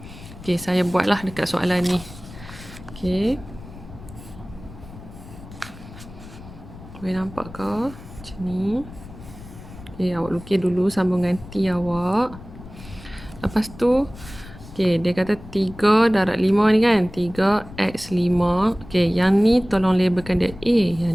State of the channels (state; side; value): noise; left; rumble, 16 dB below the sound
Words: okey, saya buatlah dekat soalan ni. Okey. Boleh nampak ke? Macam ni. Okey, awak lukis dulu sambungan T awak. Lepas tu, okey, dia kata 3 darab 5 ni kan. 3x5. Okey, yang ni tolong labelkan dia A. Yang